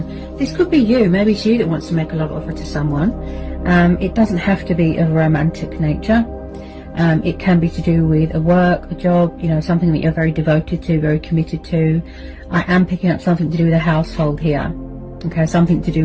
This could be you, maybe it's you that wants to make a love offer to someone. It doesn't have to be of a romantic nature. It can be to do with a work, a job, you know, something that you're very devoted to, very committed to. I am picking up something to do with a household here. Okay, something to do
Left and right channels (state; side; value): identical; both; correlation 1.00